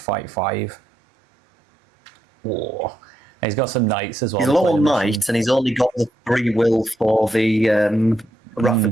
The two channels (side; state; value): both; normal; correlation 0.80